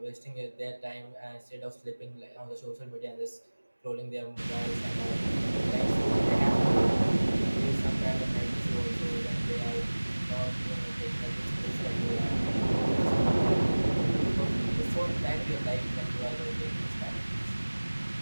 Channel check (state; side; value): inverted; both; correlation -1.00